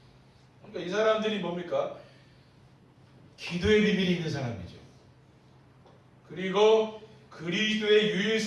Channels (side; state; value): both; identical; correlation 1.00